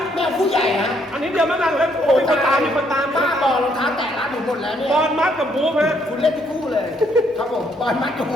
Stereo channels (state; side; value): normal; both; correlation 0.70